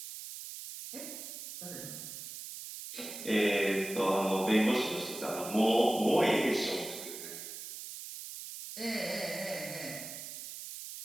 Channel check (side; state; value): right; noise; hiss, 10 dB below the sound